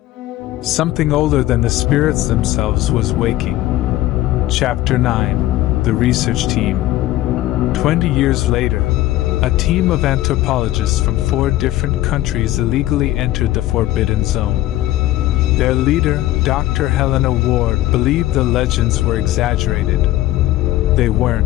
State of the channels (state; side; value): quieter; right; 15.3 dB